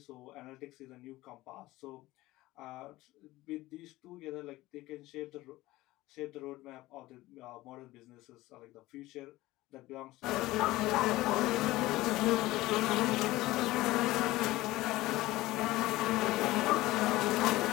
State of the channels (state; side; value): quieter; right; 18.1 dB